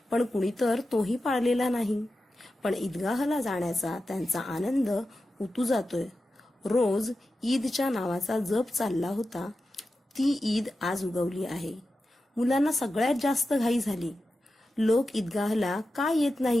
पण कुणी तर तोही पाळलेला नाही. पण ईदगाहला जाण्याचा त्यांचा आनंद उतू जातोय. रोज ईदच्या नावाचा जप चालला होता, ती ईद आज उगवली आहे. मुलांना सगळ्यात जास्त घाई झाली. लोक ईदगाहला का येत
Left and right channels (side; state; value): both; normal; correlation 0.92